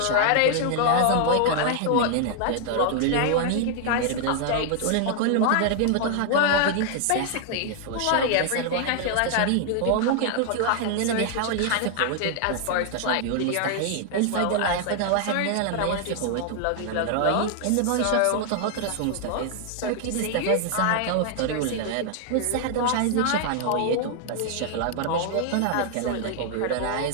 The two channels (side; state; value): both; different; correlation 0.00